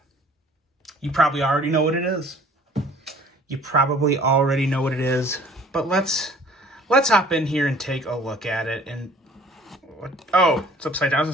You probably already know what it is. You probably already know what it is. But let's hop in here and take a look at it. And oh, it's upside down. I was gonna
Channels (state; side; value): normal; both; correlation 0.52